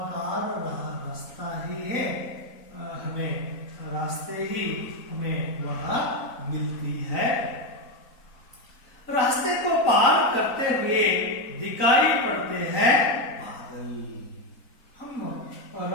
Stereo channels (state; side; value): late; right; 3.9 ms